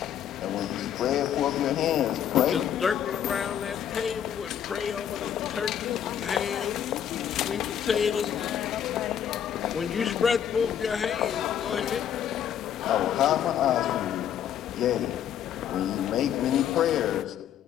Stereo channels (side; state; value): right; quieter; 9.5 dB